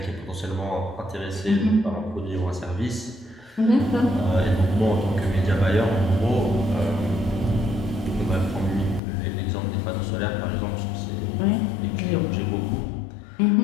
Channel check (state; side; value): drops out; right; at 9.0 s